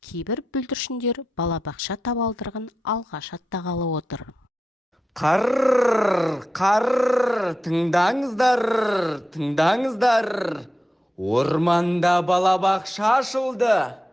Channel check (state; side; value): normal; both; correlation 0.89